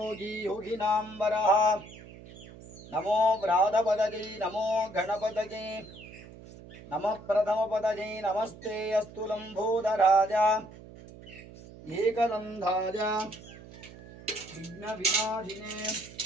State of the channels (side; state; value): right; noise; hum, 18 dB below the sound